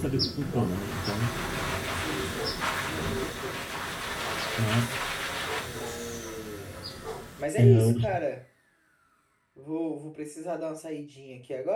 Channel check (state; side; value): identical; both; correlation 1.00